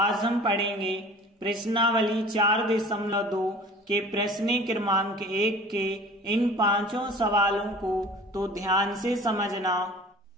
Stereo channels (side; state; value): both; normal; correlation 0.44